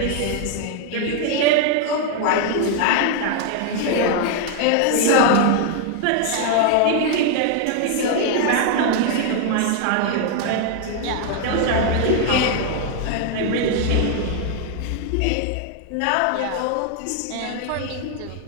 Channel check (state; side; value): different; both; correlation 0.00